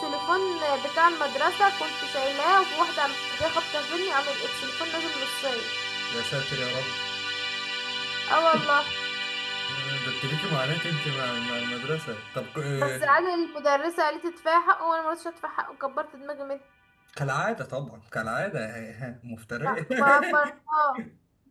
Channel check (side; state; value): both; identical; correlation 1.00